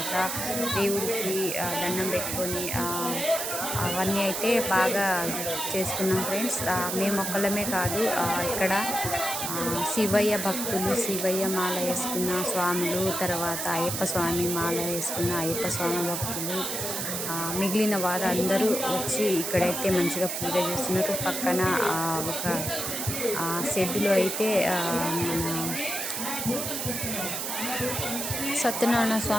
దేవుడికి దండం పెట్టుకొని అవన్నీ అయితే బాగా చేసుకున్నాం ఫ్రెండ్స్. మేము ఒక్కళ్ళమే కాదు, ఇక్కడ శివయ్య భక్తులు, శివయ్య మాల వేసుకున్న స్వాములు, తర్వాత అయ్యప్ప స్వామి మాల వేసుకున్న అయ్యప్ప స్వామి భక్తులు, మిగిలిన వారు అందరూ వచ్చి ఇక్కడైతే మంచిగా పూజ చేస్తున్నారు. పక్కన ఒక షెడ్డులో అయితే మన సత్యనారాయణ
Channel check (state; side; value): noise; right; hiss, 3 dB below the sound